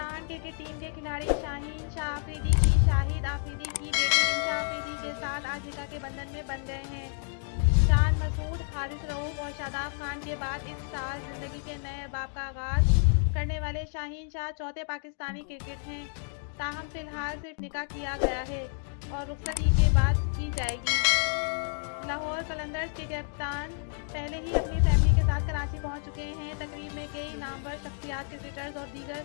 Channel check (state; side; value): silent; right; 58 dB below the other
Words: क्रिकेट टीम के खिलाड़ी शाहीन शाह आफरीदी की शाहिद आफरीदी की बेटी इंशा आफरीदी के साथ आज निकाह के बंधन में बंध गए हैं। शान मसूद, हारिस रऊफ और शादाब खान के बाद इस साल जिंदगी के नए बाब का आगाज करने वाले शाहीन शाह चौथे पाकिस्तानी क्रिकेट हैं। ताहम फिलहाल सिर्फ निकाह किया गया है और रुखसती के बाद की जाएगी। लाहौर कलंदर्स के कप्तान पहले ही अपनी फैमिली के साथ कराची पहुंच चुके हैं। तकरीब में कई नामवर शख्सियात, क्रिकेटर्स और दीगर